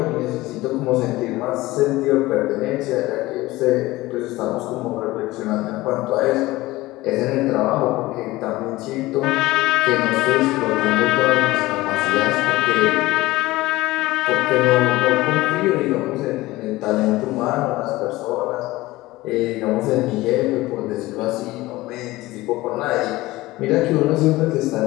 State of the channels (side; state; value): right; quieter; 18.8 dB